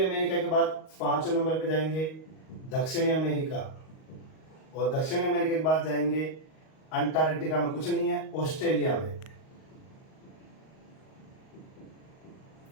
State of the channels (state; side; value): late; right; 38 ms